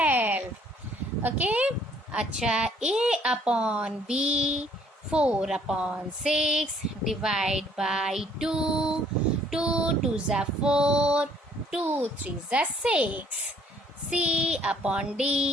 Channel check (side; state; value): both; normal; correlation 0.62